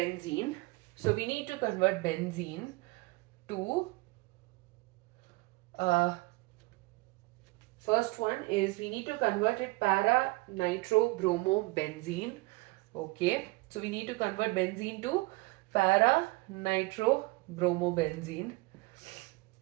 So we need to convert benzene to first one is we need to convert it para-nitrobromobenzene. Okay, so we need to convert benzene to para-nitrobromobenzene,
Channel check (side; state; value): left; quieter; 24.0 dB